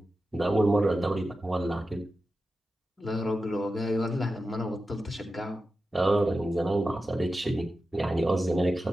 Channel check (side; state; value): both; normal; correlation 0.92